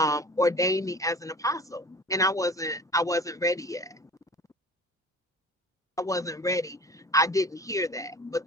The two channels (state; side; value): normal; both; correlation 0.41